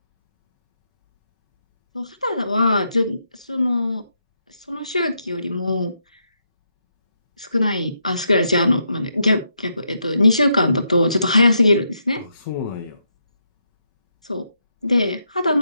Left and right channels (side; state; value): both; inverted; correlation -0.80